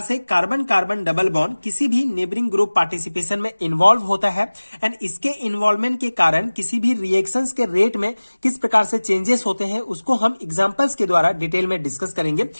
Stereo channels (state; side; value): inverted; both; correlation -1.00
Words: से कार्बन कार्बन डबल बॉन्ड किसी भी नेबरिंग ग्रुप पार्टिसिपेशन में इन्वॉल्व होता है एंड इसके इन्वॉल्वमेंट के कारण किसी भी रिएक्शंस के रेट में किस प्रकार से चेंजेस होते हैं, उसको हम एग्जांपल्स के द्वारा डिटेल में डिस्कस करेंगे।